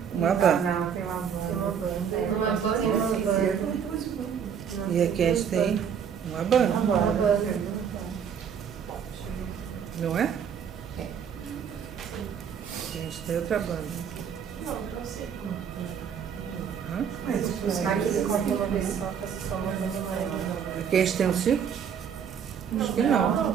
uma banda. Não, tem uma banda. Uma banda E aqui a gente tem uma banda, Uma banda. não é? É. A gente tem outra banda. Não sei como. Hã? Mas Aqui ele corta uma vez só, faço só uma vez mais. Aqui a gente tem um círculo? Acho que não.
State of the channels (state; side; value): quieter; left; 7.6 dB